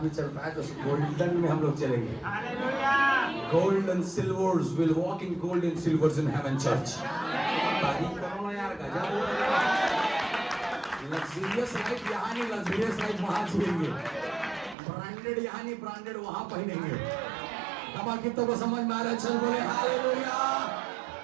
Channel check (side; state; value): left; drops out; at 14.8 s